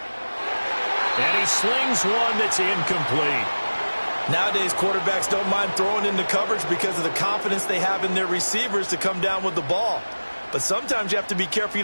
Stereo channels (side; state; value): both; inverted; correlation -1.00